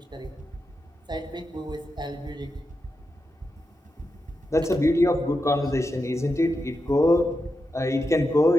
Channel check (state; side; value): normal; both; correlation 0.87